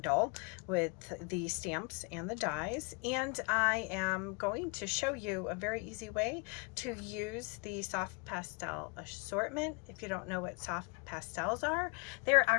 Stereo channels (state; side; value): quieter; right; 31.8 dB